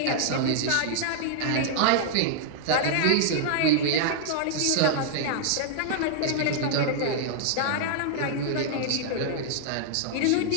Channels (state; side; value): different; both; correlation -0.01